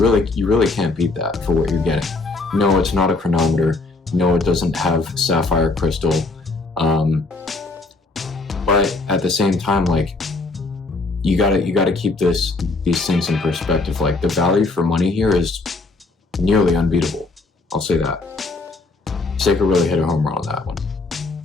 can't beat that for what you're getting. No, it's not a chronometer. No, it doesn't have sapphire crystal. But at the same time, like you gotta keep these things in perspective. Like the value for money here is nearly unbeatable. I'll say that. Seiko really hit a home run on that one.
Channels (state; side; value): quieter; right; 3.5 dB